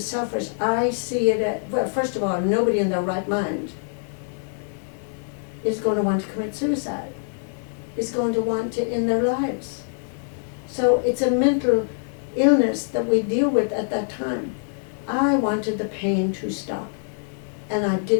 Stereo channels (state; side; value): silent; right; digital silence